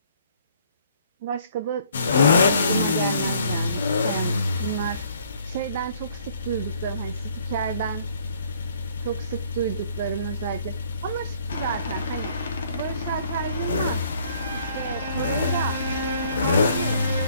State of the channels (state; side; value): inverted; both; correlation -0.61